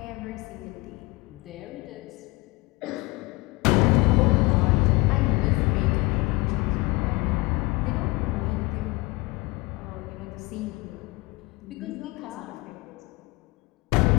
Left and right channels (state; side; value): quieter; right; 23.7 dB